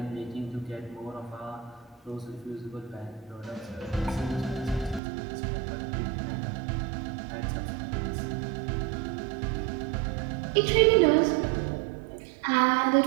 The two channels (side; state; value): left; drops out; at 5.0 s